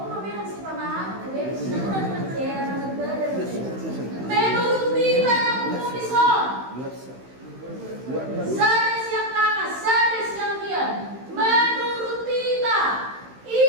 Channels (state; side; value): late; left; 16 ms